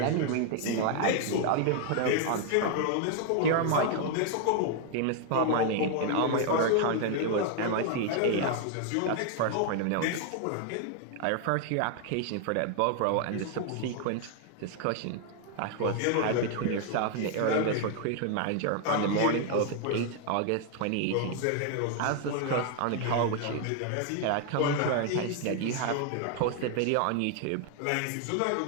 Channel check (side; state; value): both; different; correlation 0.00